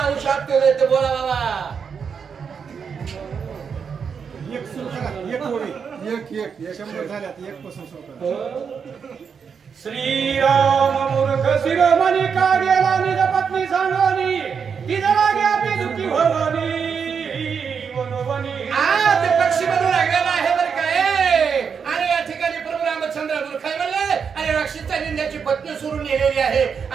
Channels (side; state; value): left; quieter; 6.5 dB